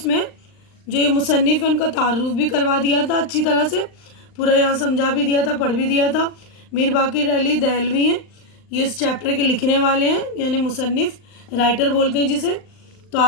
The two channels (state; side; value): late; right; 39 ms